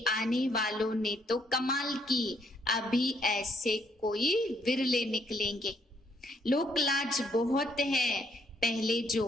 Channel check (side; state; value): both; normal; correlation 0.70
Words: आने वालों ने तो कमाल की, अभी ऐसे कोई विरले निकलेंगे। लोक लाज बहुत है। पहले जो